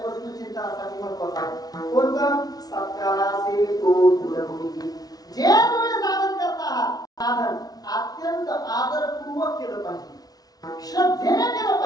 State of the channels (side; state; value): right; late; 0.19 ms